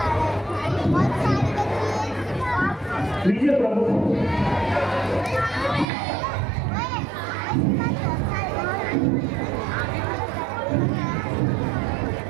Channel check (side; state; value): left; drops out; at 5.9 s